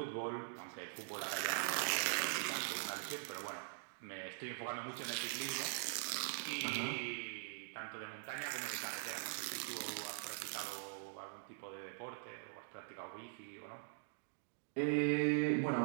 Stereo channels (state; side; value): silent; left; digital silence